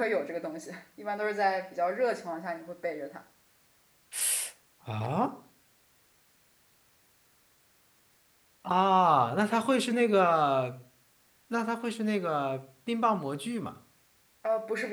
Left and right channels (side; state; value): both; identical; correlation 1.00